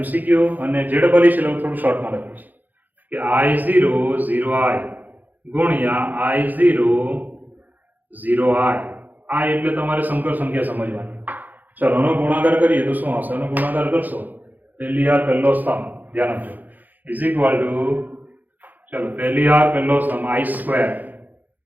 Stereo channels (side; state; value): left; late; 0.084 ms